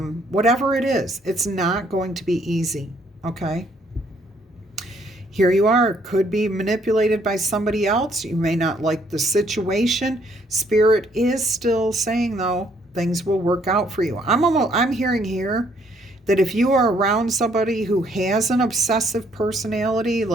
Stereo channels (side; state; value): both; normal; correlation 0.67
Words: it is, it's not going to be easy, okay? Here you are, could be manipulated by somebody else. You may not like the situation. Spirit is still saying, though, things will work out for you. I'm hearing here that if you are around somebody who has an obsessive personality,